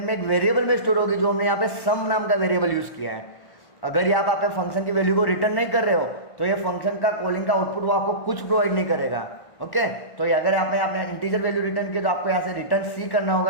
में एक वेरिएबल में स्टोर होगी, जो हमने यहाँ पे सम नाम का वेरिएबल यूज किया है। अगर ये आप फंक्शन की वैल्यू को रिटर्न नहीं कर रहे हो तो ये फंक्शन का कॉलिंग का आउटपुट वो आपको कुछ प्रोवाइड नहीं करेगा। ओके, तो ये अगर आपने आपने इंटीजर वैल्यू रिटर्न किया तो आपको यहाँ से रिटर्न सी करना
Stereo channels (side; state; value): right; late; 1.1 ms